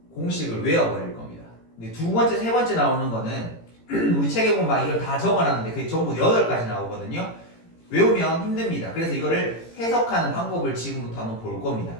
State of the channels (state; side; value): late; right; 18 ms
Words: 공식을 외워버릴 겁니다. 근데 두 번째, 세 번째 나오는 거는 우리 책에 보면 막 이걸 다 적어놨는데 그게 전부 8가지 나오거든요. 외우면 힘듭니다. 그래서 이거를 해석하는 방법을 지금부터 한번 볼 겁니다.